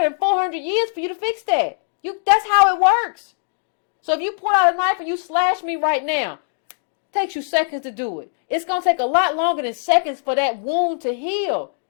than 400 years for you to fix that. That's how it works. So if you pull out a knife and you slash me right now, it takes you seconds to do it. It's going to take a lot longer than seconds for that wound to heal,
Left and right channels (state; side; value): silent; right; digital silence